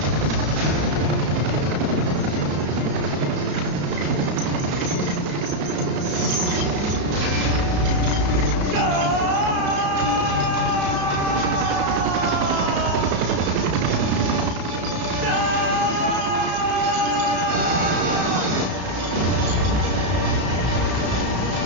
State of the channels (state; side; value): late; left; 33 ms